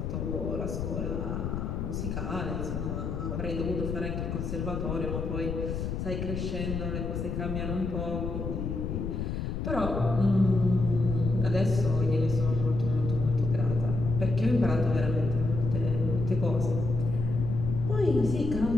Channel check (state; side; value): noise; left; rumble, 3 dB below the sound